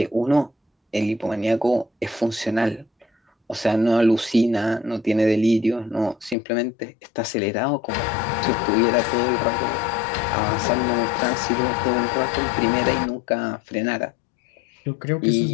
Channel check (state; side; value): drops out; right; at 6.4 s